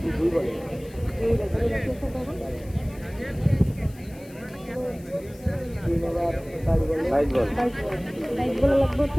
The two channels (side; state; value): left; noise; hiss, 24 dB below the sound